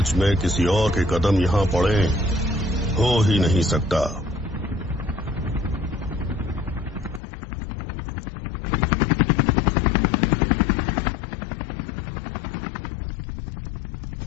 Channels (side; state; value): right; drops out; at 7.2 s